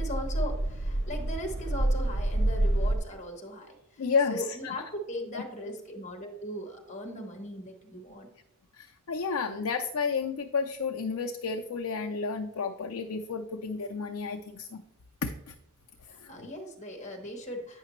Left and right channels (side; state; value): both; normal; correlation 0.32